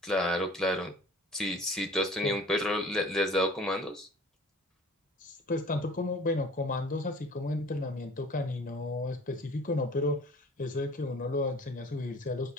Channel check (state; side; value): normal; both; correlation 0.47